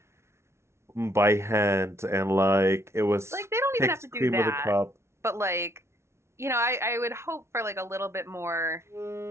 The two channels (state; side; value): late; left; 0.13 ms